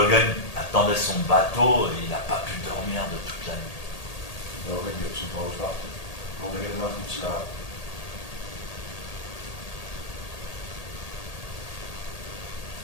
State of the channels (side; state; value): right; late; 1.8 ms